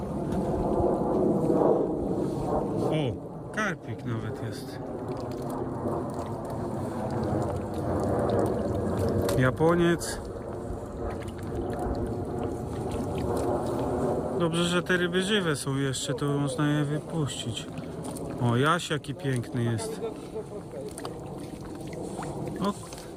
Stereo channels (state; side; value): identical; both; correlation 1.00